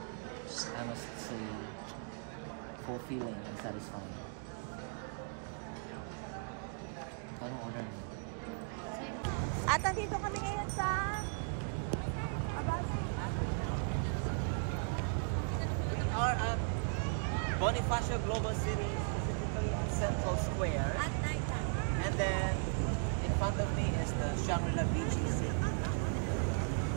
I must say, fulfilling and satisfying. Anong order mo? At nandito kami ngayon sa Abasi. We are at Bonifacio Global City, specifically at Central Square. At night time. And then, in front of me is the Shangri-La Beach City.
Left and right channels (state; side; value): silent; left; 53 dB below the other